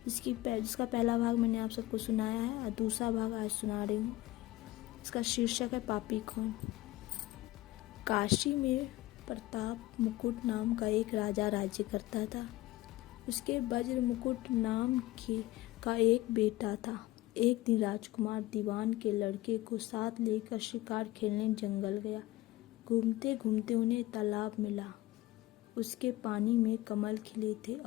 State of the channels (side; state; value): right; quieter; 17.7 dB